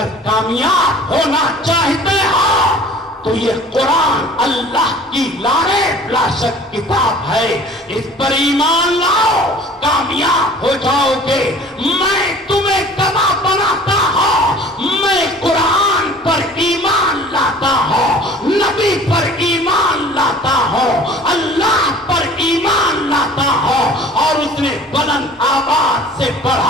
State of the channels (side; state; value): both; normal; correlation 0.48